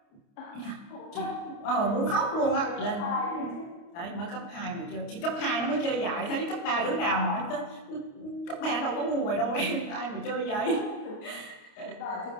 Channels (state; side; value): late; right; 29 ms